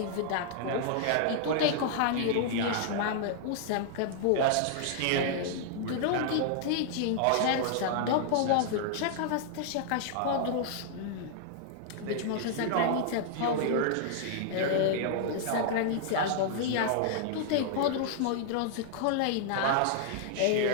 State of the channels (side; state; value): both; different; correlation -0.01